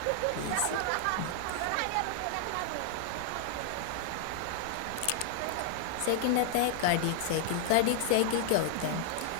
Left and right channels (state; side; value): different; both; correlation -0.01